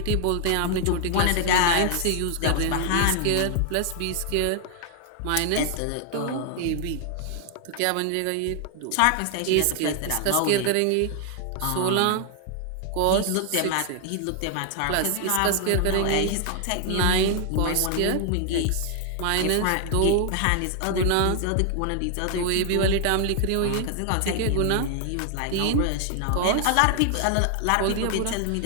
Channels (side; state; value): both; different; correlation 0.00